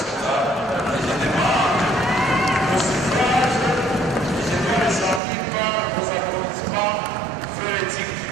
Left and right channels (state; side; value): drops out; left; at 5.2 s